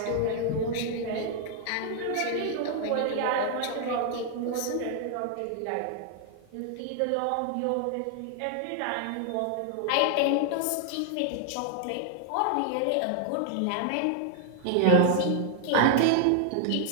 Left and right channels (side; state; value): both; different; correlation 0.00